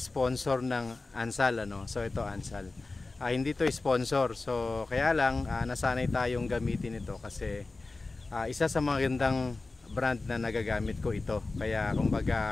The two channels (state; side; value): quieter; right; 3.5 dB